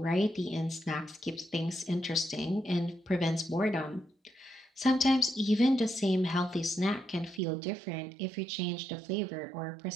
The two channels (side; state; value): left; drops out; at 7.4 s